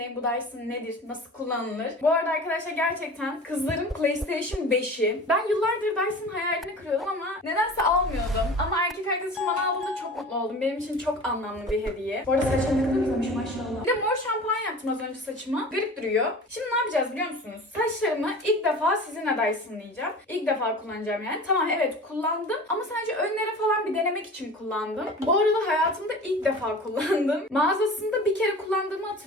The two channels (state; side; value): normal; both; correlation 0.38